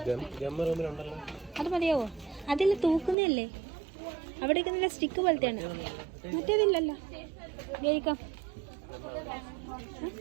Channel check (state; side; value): drops out; left; at 3.2 s